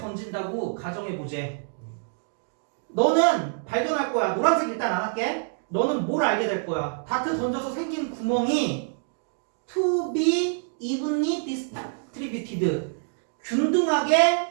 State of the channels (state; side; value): silent; left; digital silence